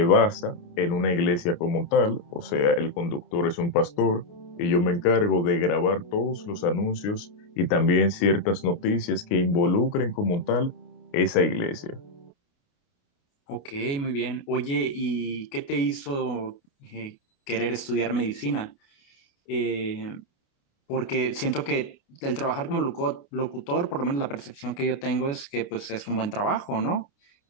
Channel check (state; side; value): late; right; 29 ms